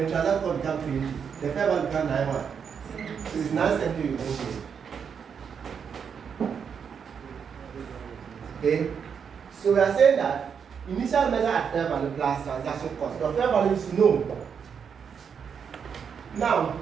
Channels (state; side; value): quieter; left; 6.9 dB